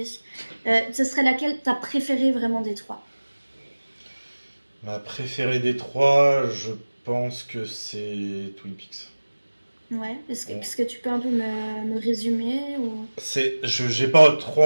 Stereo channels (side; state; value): both; inverted; correlation -1.00